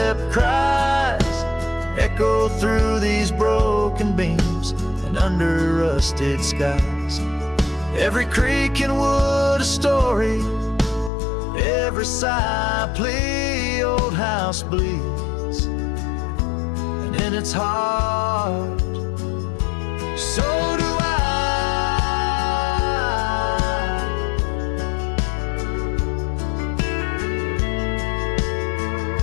cries echo through these broken beams and under rusted skies. Every creak in wood a story, every sigh a plea. Old house bleeds, and in its heart, so do I.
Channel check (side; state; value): right; drops out; at 11.1 s